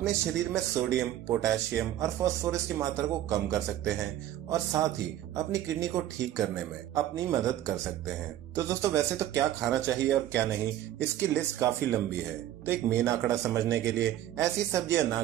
शरीर में सोडियम, पोटेशियम और फास्फोरस की मात्रा को कम कर सकते हैं और साथ ही अपनी किडनी को ठीक करने में अपनी मदद कर सकते हैं। तो दोस्तों, वैसे तो क्या खाना चाहिए और क्या नहीं, इसकी लिस्ट काफी लंबी है। तो एक मेन आंकड़ा समझने के लिए ऐसी सब्जियां ना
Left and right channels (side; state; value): left; quieter; 12.7 dB